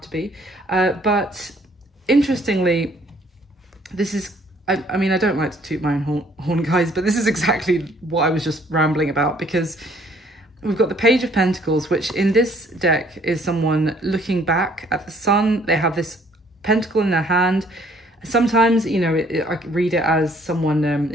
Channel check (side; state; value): both; normal; correlation 0.61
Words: to be. But interestingly, this is, I mean, I don't like to toot my own horn, guys, but this is exactly what I was just rambling about, because we've got the Page of Pentacles, which in this deck is someone looking back at the sun. They have this pentacle in their hand. Sometimes, I read it as someone